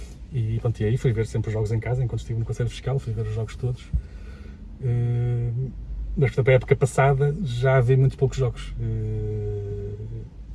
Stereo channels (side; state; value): both; identical; correlation 1.00